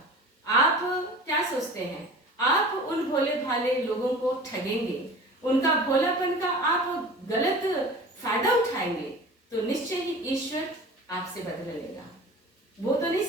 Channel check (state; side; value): normal; both; correlation 0.39